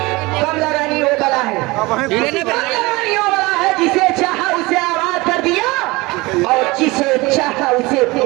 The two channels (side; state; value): left; quieter; 22.7 dB